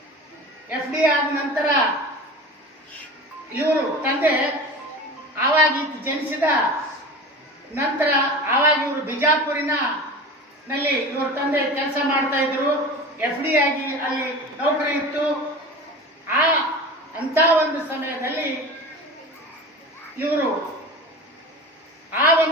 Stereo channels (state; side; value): normal; both; correlation 0.34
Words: FDA ಆದ ನಂತರ ಇವರು ತಂದೆ ಆವಾಗ ಜನಿಸಿದ ನಂತರ ಆವಾಗ ಇವರು ಬಿಜಾಪುರಿನ ನಲ್ಲಿ ಇವ್ರ ತಂದೆ ಕೆಲಸ ಮಾಡ್ತಾ ಇದ್ರು. FDA ಆಗಿ ಅಲ್ಲಿ ನೌಕರಿ ಇತ್ತು. ಅಂತ ಒಂದು ಸಮಯದಲ್ಲಿ ಇವರು ಆ